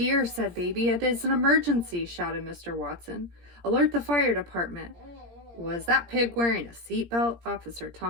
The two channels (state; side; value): late; left; 17 ms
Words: said Baby. It is an emergency, shouted Mr. Watson. Alert the fire department. Was that pig wearing a seatbelt? Officer